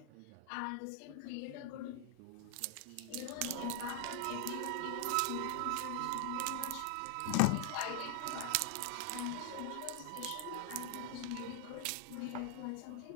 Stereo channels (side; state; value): both; different; correlation 0.00